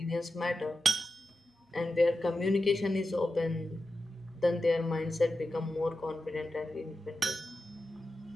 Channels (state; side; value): normal; both; correlation 0.91